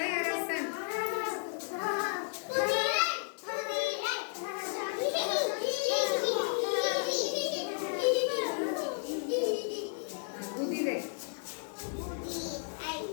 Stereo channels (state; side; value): silent; right; 56 dB below the other